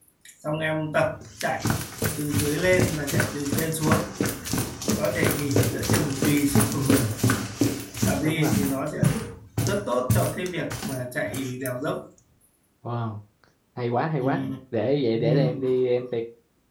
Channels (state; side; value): identical; both; correlation 1.00